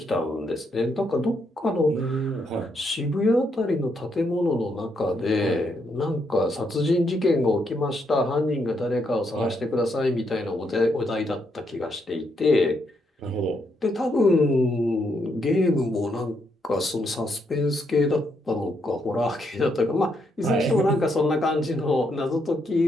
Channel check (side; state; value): both; normal; correlation 0.77